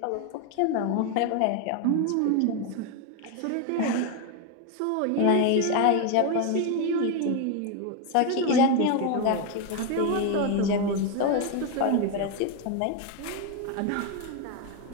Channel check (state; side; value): different; both; correlation 0.02